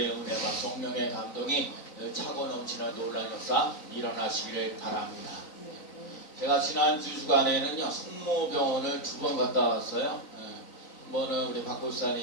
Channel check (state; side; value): late; right; 3.9 ms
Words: 은혜와 성령의 감동이 차고 넘치는 놀라운 역사 일어나시기를 바랍니다. 제가 지난 두 주간에는요 성모병원을 2번 갔다 왔어요. 한 번은 우리 박